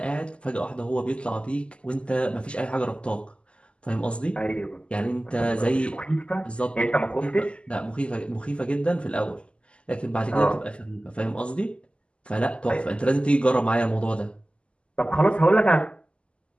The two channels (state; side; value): late; right; 0.054 ms